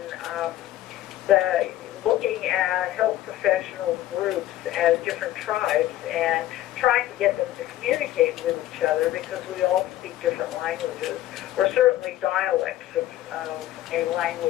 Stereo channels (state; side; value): quieter; right; 14.0 dB